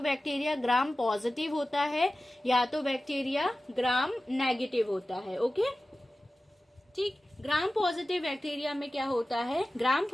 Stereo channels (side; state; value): both; normal; correlation 0.95